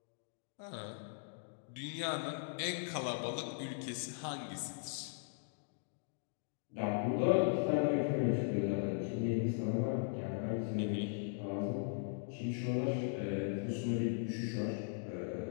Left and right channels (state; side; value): silent; right; digital silence